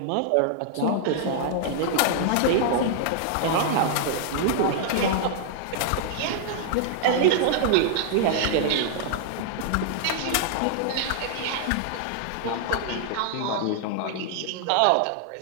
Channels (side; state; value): both; different; correlation -0.01